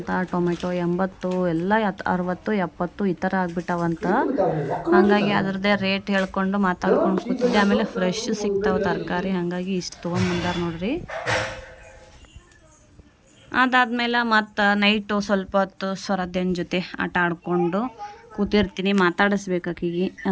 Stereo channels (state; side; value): identical; both; correlation 1.00